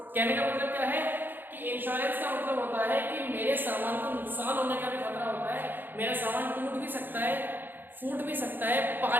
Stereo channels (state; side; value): late; left; 0.093 ms